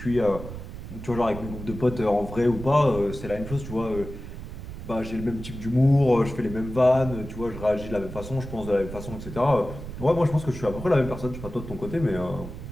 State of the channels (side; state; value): right; noise; rumble, 10 dB below the sound